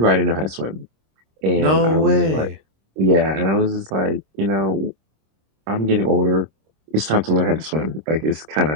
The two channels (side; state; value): left; late; 26 ms